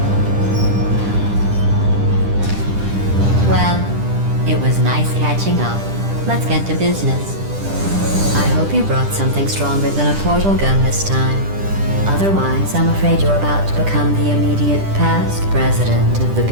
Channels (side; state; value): left; late; 10 ms